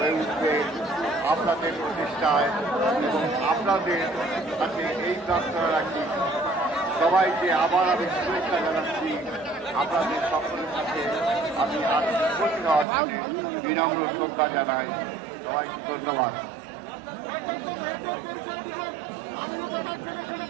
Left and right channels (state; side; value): drops out; left; at 12.9 s